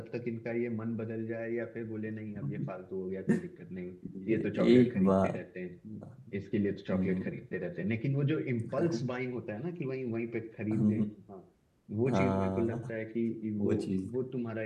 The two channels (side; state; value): both; identical; correlation 1.00